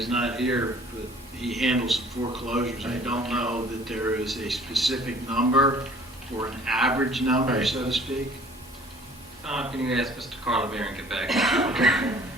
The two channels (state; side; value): normal; both; correlation 0.53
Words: not here, but he handles some foreclosures. I don't know that there is a specific number or an average number, Right. so to speak. Can you ask Mr. Carlemere and get back?